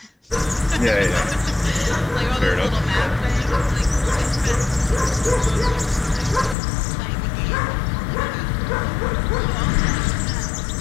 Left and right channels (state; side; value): drops out; right; at 6.6 s